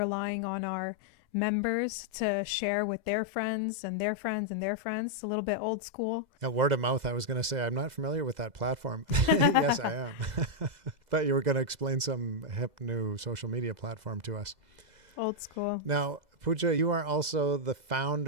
on our members to share with their friends and their friends and their friends. A little bit old school. Word of mouth, I was going to say, I'm not familiar with that platform. Yes, I am. Thought you were going to explain some hip new social media platform to us. Old school. Now, Pooja, you are also the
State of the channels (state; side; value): late; left; 2.0 ms